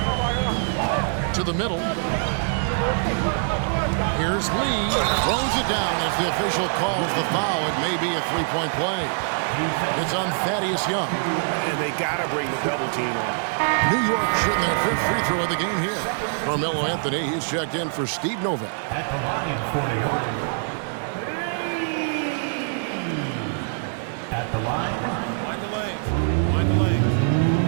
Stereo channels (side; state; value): left; silent; digital silence